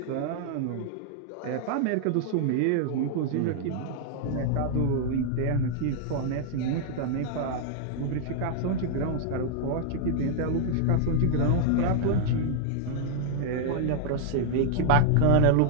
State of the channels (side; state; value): both; different; correlation -0.01